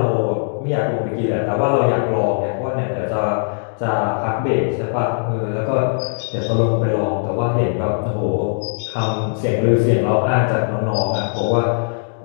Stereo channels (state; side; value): silent; right; digital silence